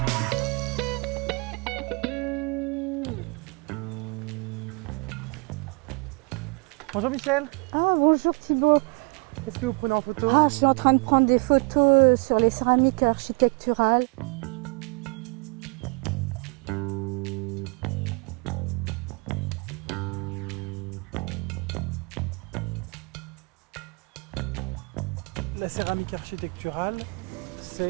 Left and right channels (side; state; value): left; quieter; 32.1 dB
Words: Bonjour Michel, Ah bonjour Thibaut. qu'est-ce que vous prenez en photo? Ah, je suis en train de prendre des photos sur les céramiques architecturales. La céramique architecturale,